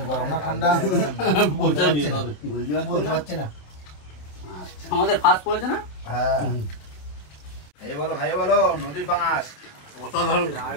গরম না ঠান্ডা বলতে পারছি না। আচ্ছা, আমাদের ফাস্ট পড়েছে না? হ্যাঁ, খাইয়ে বলো নদীর পাঙাশ। অসাধারণ।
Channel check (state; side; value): late; right; 27 ms